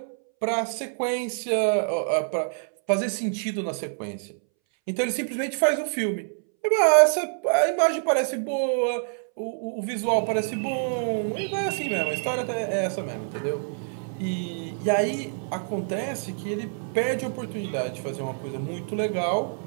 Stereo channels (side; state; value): left; silent; 61 dB below the other